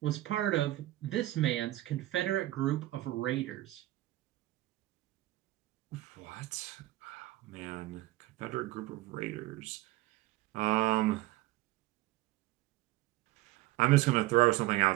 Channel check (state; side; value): quieter; left; 17.1 dB